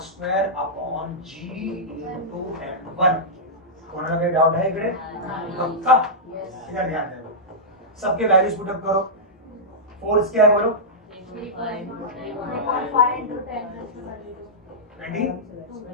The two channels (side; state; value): both; normal; correlation -0.12